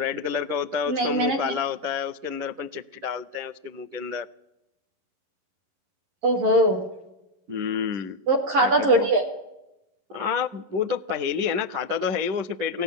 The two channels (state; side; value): late; left; 11 ms